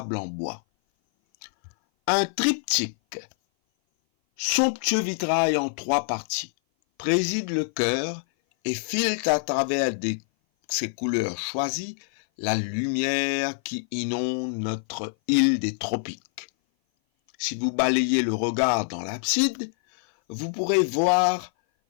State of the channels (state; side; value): silent; right; 57 dB below the other